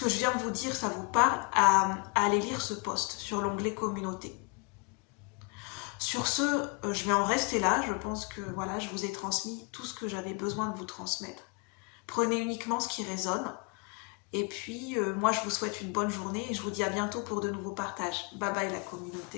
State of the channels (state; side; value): quieter; right; 31.6 dB